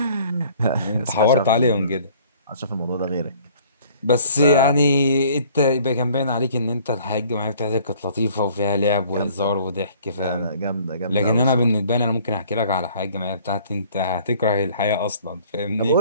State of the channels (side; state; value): both; inverted; correlation -0.55